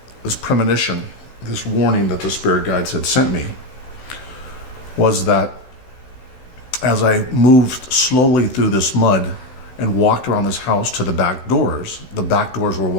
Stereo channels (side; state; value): right; late; 16 ms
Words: this premonition, this warning that the spirit guides had sent me, was that as I moved slowly through this mud and walked around this house to the back doors were